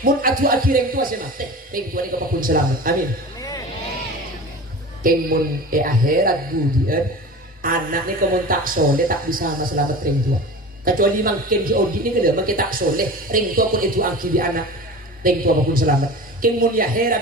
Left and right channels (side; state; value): both; normal; correlation 0.34